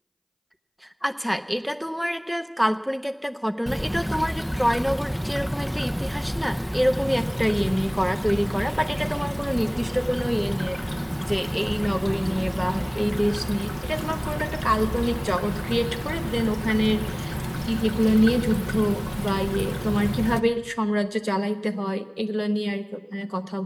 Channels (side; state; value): both; identical; correlation 1.00